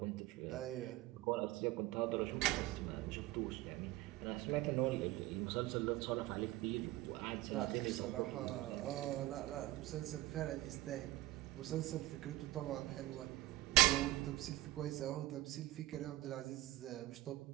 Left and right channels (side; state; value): left; quieter; 17.7 dB